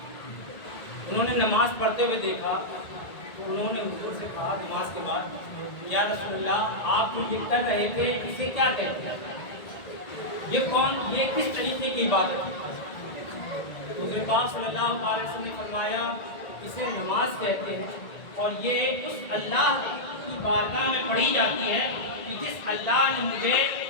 انہوں نے نماز پڑھتے ہوئے دیکھا تو انہوں نے حضور سے کہا نماز کے بعد، یا رسول اللہ، آپ جو یہ کر رہے تھے اسے کیا کہتے ہیں؟ یہ کس طریقے کی عبادت ہے؟ حضور پاک صلی اللہ علیہ وسلم نے فرمایا اسے نماز کہتے ہیں، اور یہ اس اللہ کی بارگاہ میں پڑھی جاتی ہے کہ جس اللہ نے مجھے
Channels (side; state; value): right; late; 1.9 ms